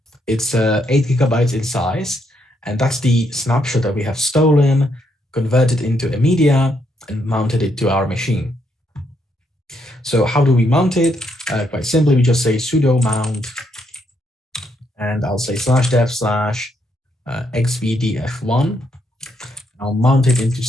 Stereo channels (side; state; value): both; normal; correlation 0.75